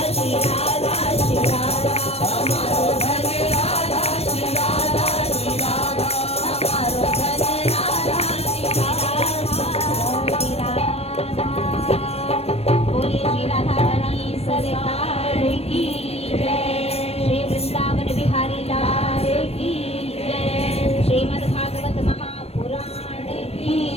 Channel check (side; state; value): right; late; 0.29 ms